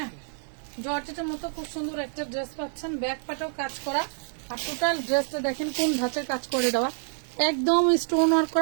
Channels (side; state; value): left; silent; 60 dB below the other